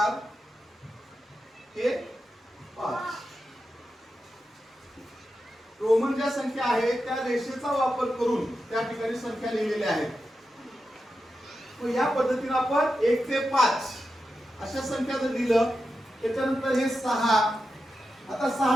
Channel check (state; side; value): normal; both; correlation 0.90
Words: हे 5। रोमन ज्या संख्या आहेत त्या रेषेचा वापर करून त्या ठिकाणी संख्या लिहिलेल्या आहेत। मग या पद्धतीने आपण 1 ते 5 अशा संख्या जर लिहिलं, त्याच्यानंतर हे 6। आता 6